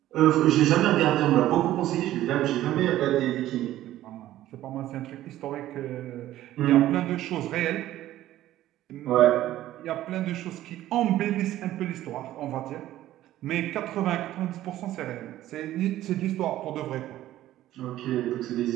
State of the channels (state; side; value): quieter; left; 14.0 dB